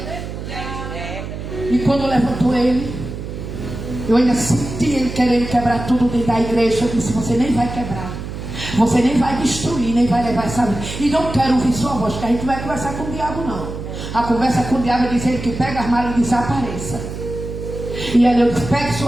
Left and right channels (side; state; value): right; noise; hum, 8 dB below the sound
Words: E quando levantou ele, eu ainda senti ele querendo quebrar tudo dentro da igreja. Eu disse: você nem vai quebrar, você nem vai destruir, nem vai levar essa vida. E não quero ouvir sua voz, porque a gente não vai conversar com o diabo, não. A conversa com o diabo é dizer que pega as malas e desapareça. E aí eu disse: pegue